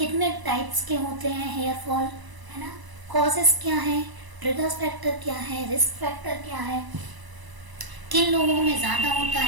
टाइप्स के होते हैं हेयर फॉल, है ना, कॉजेस क्या हैं, ट्रिगर्स फैक्टर क्या है, रिस्क फैक्टर क्या है, किन लोगों में ज़्यादा होता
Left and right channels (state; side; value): late; left; 1.0 ms